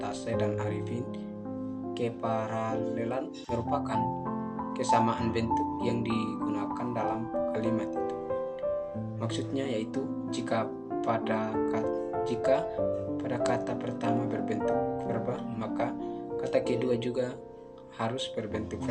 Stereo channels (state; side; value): identical; both; correlation 1.00